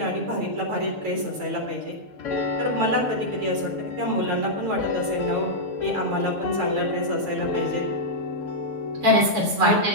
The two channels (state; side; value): late; left; 6.9 ms